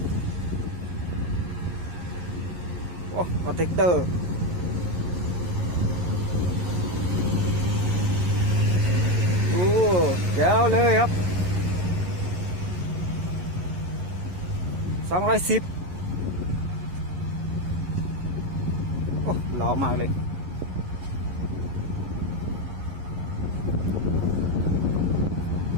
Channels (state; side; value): late; left; 11 ms